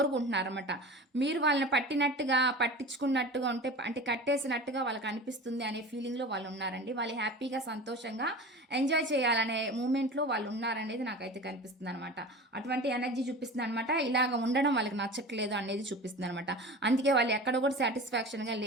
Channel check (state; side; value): normal; both; correlation 0.35